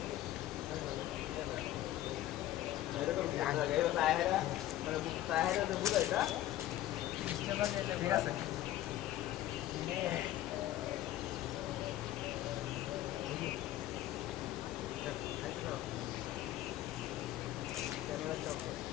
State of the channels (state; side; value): quieter; right; 14.0 dB